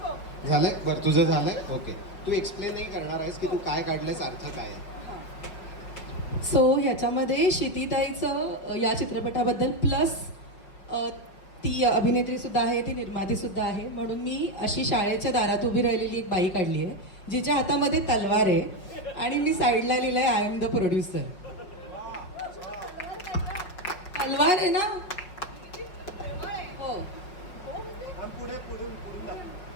झालंय? बरं, तुझं झालंय. ओके, तू एक्सप्लेन नाही करणार आहेस की तू काय काढलंयस, अर्थ काय आहे? सो ह्याच्यामध्ये क्षितिताईचं या चित्रपटाबद्दल प्लस ती अभिनेत्रीसुद्धा आहे, ती निर्मातीसुद्धा आहे, म्हणून मी अशी शाळेच्या दारात उभी राहिलेली एक बाई काढली आहे जिच्या हातामध्ये तलवार आहे आणि मी साईडला लिहिलं आहे आय एम द प्रोड्युसर. तलवार आहे ना. हो, पुढे पुढून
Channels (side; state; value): right; late; 5.4 ms